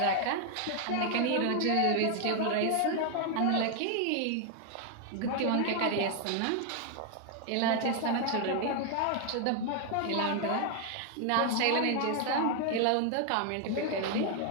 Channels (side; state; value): both; different; correlation 0.00